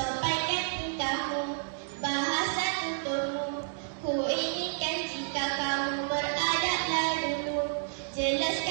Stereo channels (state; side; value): silent; left; digital silence